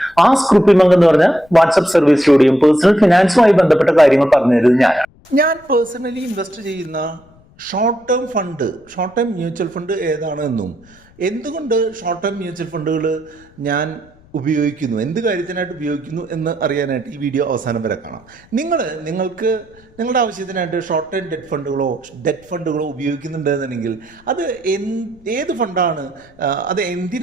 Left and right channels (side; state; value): left; noise; rumble, 28 dB below the sound